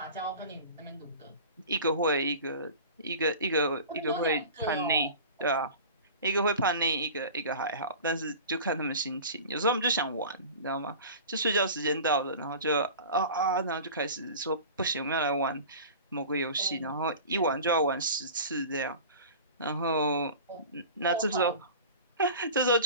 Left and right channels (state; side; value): inverted; both; correlation -0.37